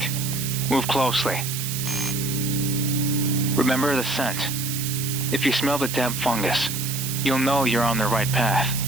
Move closely. Remember the scent. If you smell the damp fungus, you'll know you're on the right path.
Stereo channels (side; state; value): right; noise; hiss, 5 dB below the sound